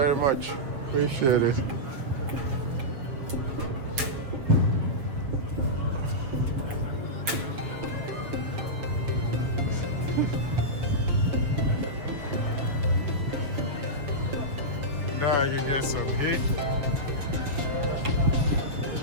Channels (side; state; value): left; late; 7.5 ms